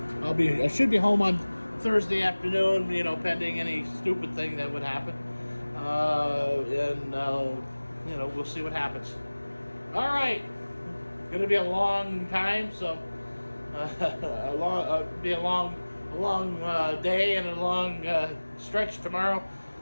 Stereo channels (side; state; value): both; inverted; correlation -1.00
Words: should be home on Thursday afternoon. Pending any stupid thing that would happen. We'll see what happens. All right, gonna be a long time, so be a long day and a long stretch tomorrow.